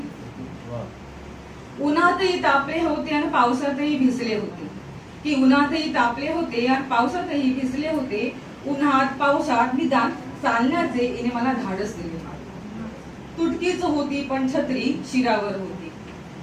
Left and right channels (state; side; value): identical; both; correlation 1.00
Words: उन्हातही तापले होते आणि पावसातही भिजले होते, की उन्हातही तापले होते आणि पावसातही भिजले होते। उन्हात पावसात निदान चालण्याचे इने मला धाडस दिले। तुटकीच होती पण छत्री शिरावर होती,